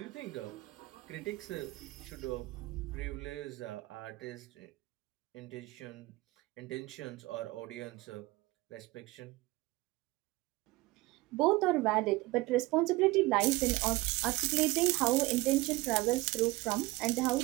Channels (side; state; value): left; quieter; 20.7 dB